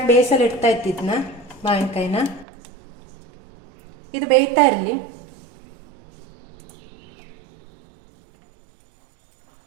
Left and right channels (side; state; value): left; drops out; at 2.5 s